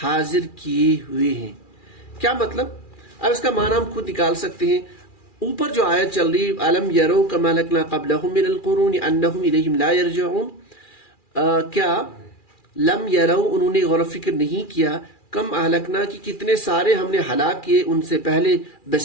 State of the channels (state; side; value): late; right; 2.4 ms